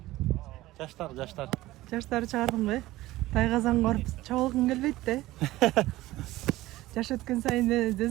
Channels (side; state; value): left; quieter; 17.1 dB